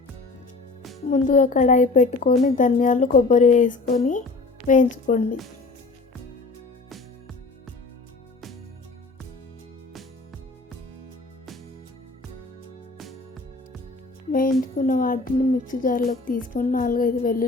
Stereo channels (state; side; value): quieter; right; 3.5 dB